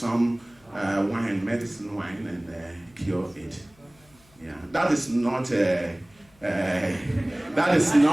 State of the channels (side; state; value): left; noise; hum, 30 dB below the sound